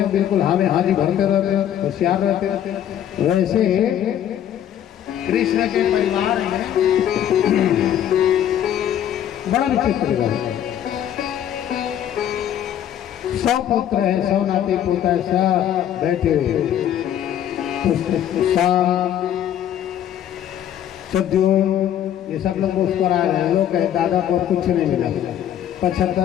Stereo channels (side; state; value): right; quieter; 10.5 dB